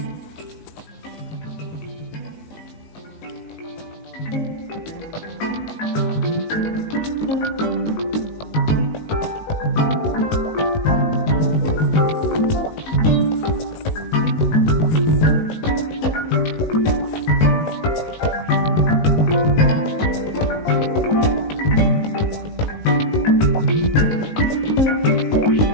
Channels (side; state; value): right; late; 19 ms